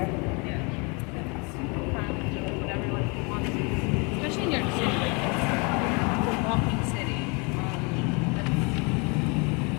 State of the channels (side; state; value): right; quieter; 31.1 dB